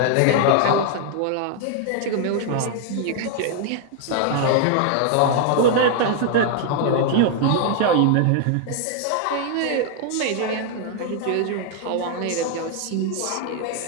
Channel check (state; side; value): different; both; correlation 0.00